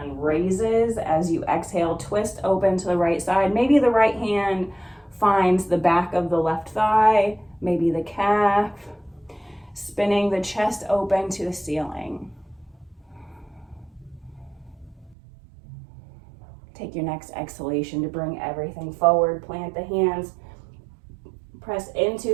raises. As you exhale, twist open to the right side. Maybe the right hand finds the back of the left thigh, maybe the calf. spinning the chest open to the ceiling. Take your next exhalation to bring everything forward. Plant the hands. Press into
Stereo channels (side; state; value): left; drops out; at 15.2 s